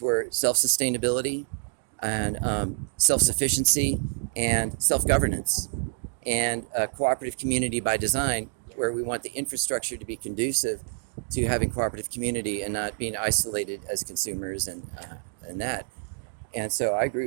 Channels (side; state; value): left; silent; digital silence